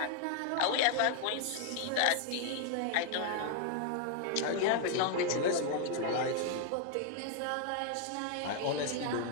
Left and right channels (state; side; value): different; both; correlation 0.00